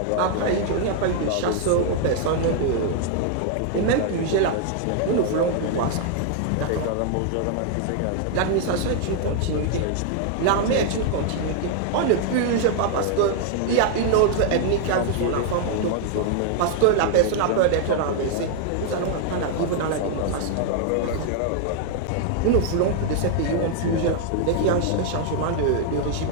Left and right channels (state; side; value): different; both; correlation 0.00